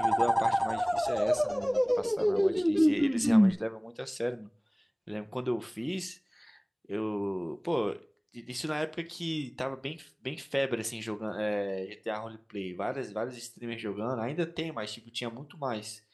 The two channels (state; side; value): identical; both; correlation 1.00